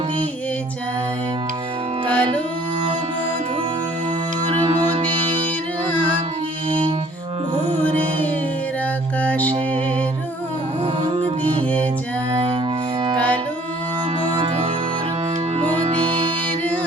দিয়ে যায় কালো মধুর মোদের আঁখি ভোরের আকাশে রং দিয়ে যায় কালো মধুর মোদের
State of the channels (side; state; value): both; normal; correlation 0.57